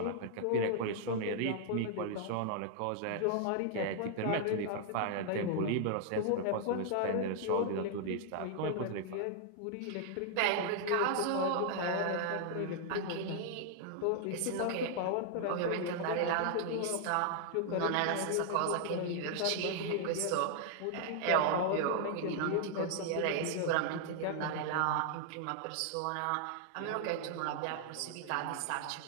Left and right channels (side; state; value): both; different; correlation 0.00